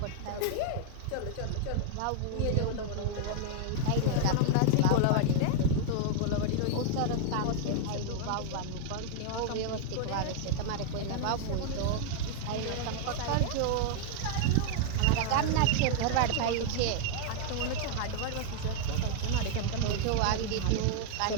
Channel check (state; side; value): different; both; correlation 0.00